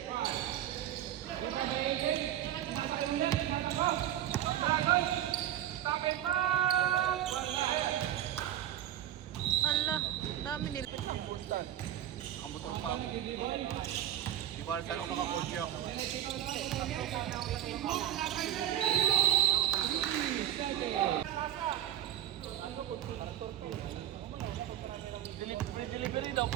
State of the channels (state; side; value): quieter; left; 11.9 dB